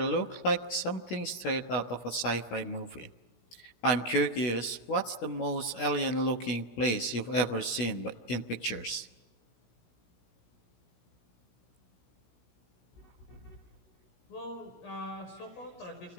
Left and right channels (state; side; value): late; right; 17 ms